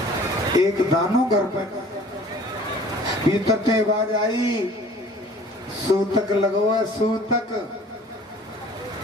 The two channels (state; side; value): normal; both; correlation 0.49